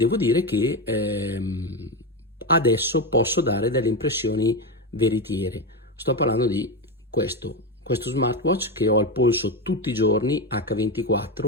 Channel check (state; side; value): normal; both; correlation 0.15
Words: dire che adesso posso dare delle impressioni veritiere. Sto parlando di questo smartwatch che ho al polso tutti i giorni,